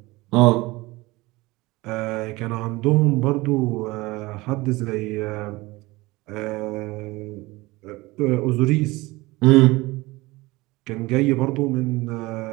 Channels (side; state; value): left; quieter; 21.4 dB